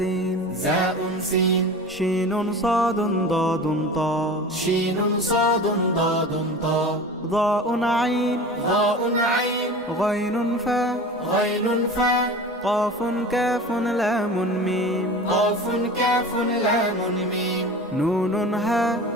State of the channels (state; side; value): normal; both; correlation 0.35